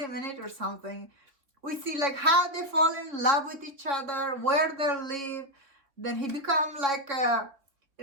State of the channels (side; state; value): left; late; 3.6 ms